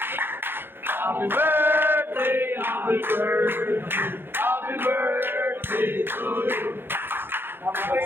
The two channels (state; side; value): late; left; 0.10 ms